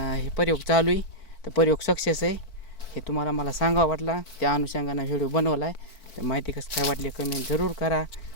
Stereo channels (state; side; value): late; right; 4.5 ms